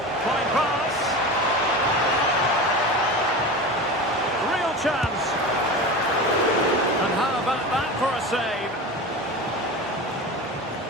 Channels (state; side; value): normal; both; correlation 0.29